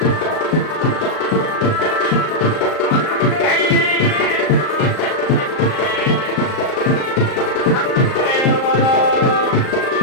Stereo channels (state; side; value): late; right; 38 ms